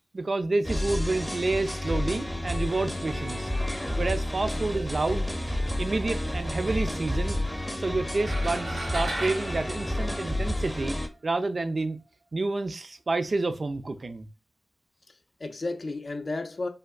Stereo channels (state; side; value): normal; both; correlation 0.96